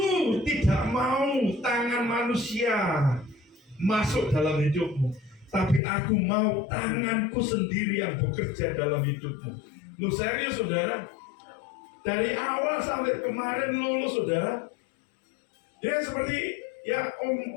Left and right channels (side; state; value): right; drops out; at 5.8 s